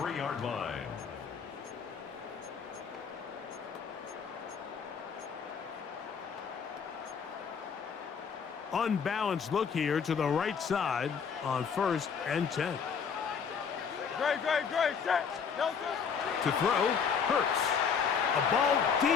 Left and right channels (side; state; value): right; quieter; 6.5 dB